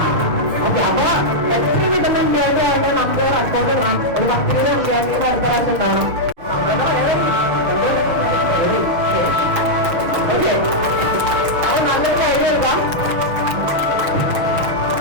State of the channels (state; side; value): late; left; 6.7 ms